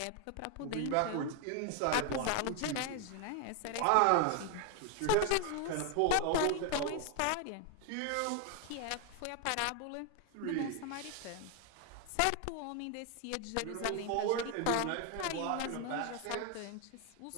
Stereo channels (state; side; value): different; both; correlation 0.01